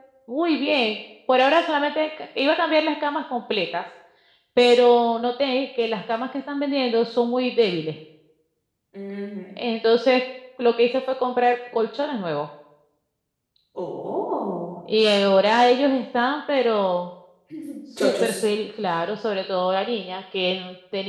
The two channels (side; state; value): both; identical; correlation 1.00